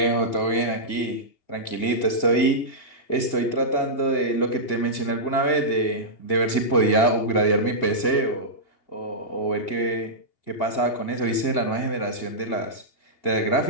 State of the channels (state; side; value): late; right; 2.8 ms